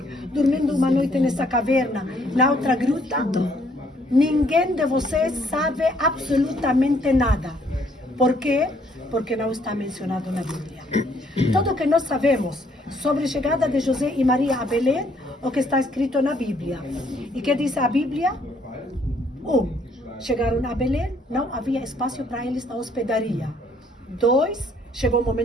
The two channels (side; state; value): both; normal; correlation 0.66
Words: dormindo uma noite nessa caverna, na outra gruta. Ninguém de vocês sabe absolutamente nada. Por quê? Porque não está mencionado na Bíblia. Tudo que nós sabemos sobre a chegada de José e Maria a Belém, o que está escrito na Bíblia. E que diz a Bíblia? Chegaram a Belém, não havia espaço para eles na hospedaria. 2, chegou o